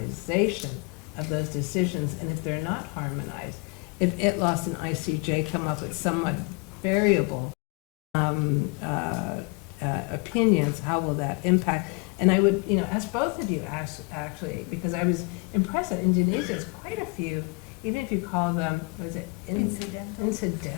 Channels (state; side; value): quieter; right; 29.0 dB